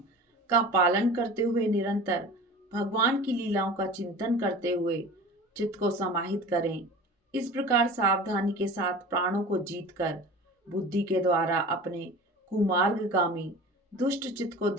का पालन करते हुए निरंतर भगवान की लीलाओं का चिंतन करते हुए चित्त को समाहित करें। इस प्रकार सावधानी के साथ प्राणों को जीतकर बुद्धि के द्वारा अपने कुमार्गगामी दुष्ट चित्त को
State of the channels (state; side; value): normal; both; correlation 0.37